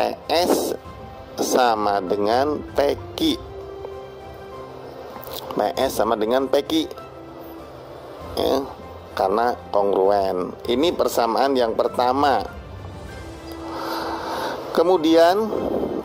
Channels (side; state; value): both; identical; correlation 1.00